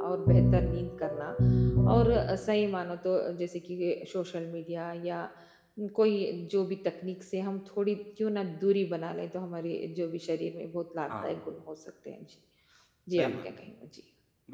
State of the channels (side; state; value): both; identical; correlation 1.00